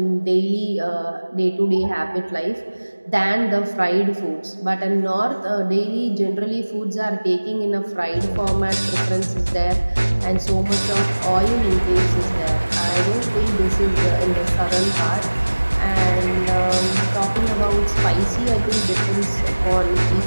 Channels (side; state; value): both; inverted; correlation -1.00